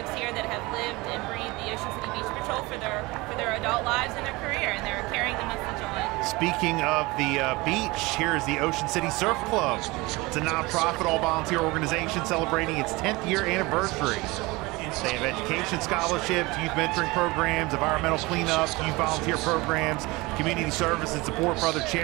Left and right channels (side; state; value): left; quieter; 22.8 dB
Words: here that have lived and breathed the Ocean City Beach Patrol for their adult lives and their career, and they're carrying the message on. Speaking of the beach, here is the Ocean City Surf Club. It's a nonprofit, all-volunteer organization celebrating its 10th year anniversary. They have education scholarships, youth mentoring programs, environmental cleanup, youth volunteer programs, community service and support for other